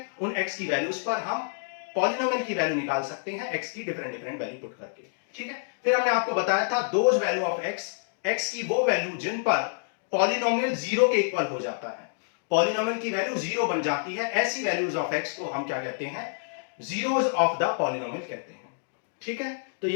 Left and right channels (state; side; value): silent; right; digital silence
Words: उन x की वैल्यूज पर हम पॉलिनोमियल की वैल्यू निकाल सकते हैं x की डिफरेंट वैल्यू पुट करके। ठीक है, फिर हमने आपको बताया था दोज वैल्यू ऑफ x की वो वैल्यू जिन पर पॉलिनोमियल जीरो के इक्वल हो जाता है, पॉलिनोमियल की वैल्यू जीरो बन जाती है, ऐसी वैल्यूज ऑफ x को हम क्या कहते हैं, जीरोज ऑफ द पॉलिनोमियल कहते हैं। ठीक है, तो